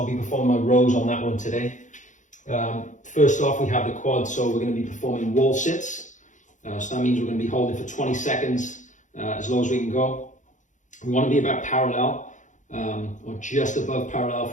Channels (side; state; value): right; late; 0.36 ms